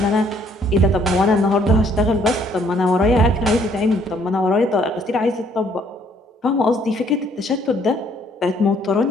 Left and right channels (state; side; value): normal; both; correlation 0.64